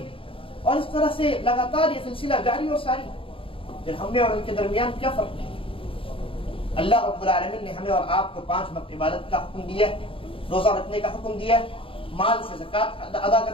اور اس طرح سے لگاتار یہ سلسلہ جاری اور ساری۔ پھر ہم نے اور ان کے درمیان کیا فرق ہے؟ اللہ رب العالمین نے ہمیں اور آپ کو 5 وقت عبادت کا حکم دیا ہے، روزہ رکھنے کا حکم دیا ہے، مال سے زکات ادا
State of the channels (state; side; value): late; right; 0.26 ms